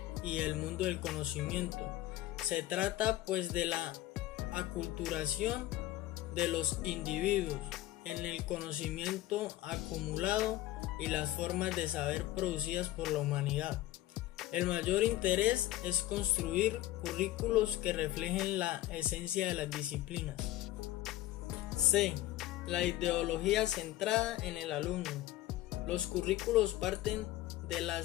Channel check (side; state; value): right; quieter; 15.6 dB